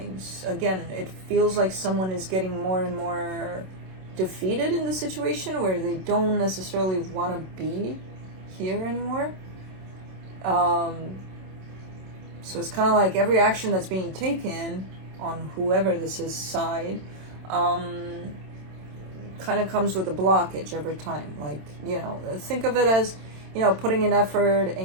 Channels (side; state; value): left; late; 27 ms